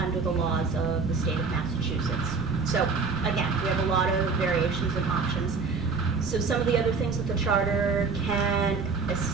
the laws of the state of Massachusetts. So again, we have a lot of variations and options. So some of the other things that the charter can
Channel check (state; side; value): quieter; left; 4.6 dB